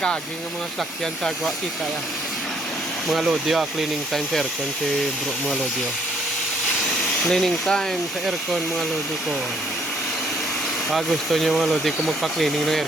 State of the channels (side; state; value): both; normal; correlation 0.66